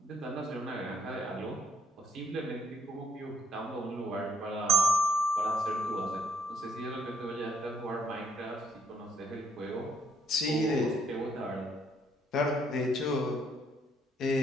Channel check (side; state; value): both; normal; correlation 0.67